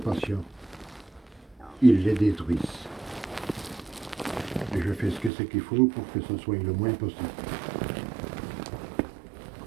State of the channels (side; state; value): left; drops out; at 5.3 s